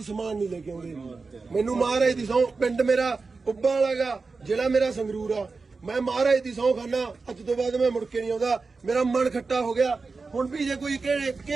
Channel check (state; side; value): quieter; left; 4.2 dB